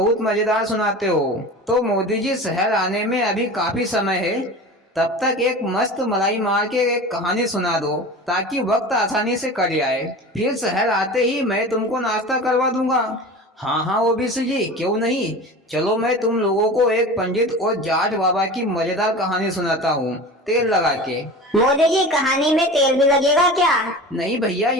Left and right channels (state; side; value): normal; both; correlation 0.34